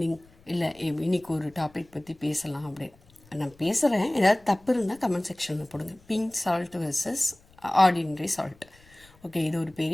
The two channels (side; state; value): left; noise; rumble, 28 dB below the sound